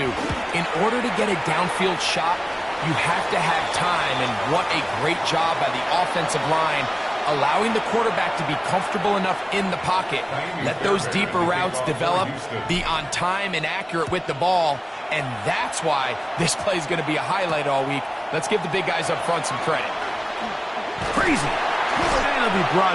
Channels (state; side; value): identical; both; correlation 1.00